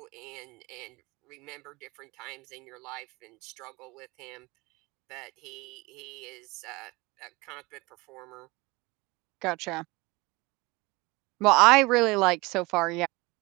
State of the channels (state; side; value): quieter; left; 23.7 dB